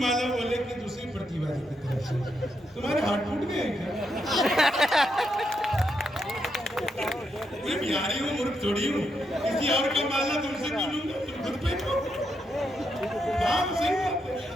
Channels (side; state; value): both; normal; correlation 0.81